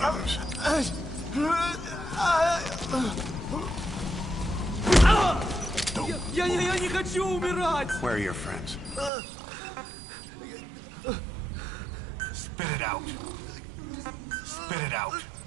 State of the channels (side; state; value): left; drops out; at 9.1 s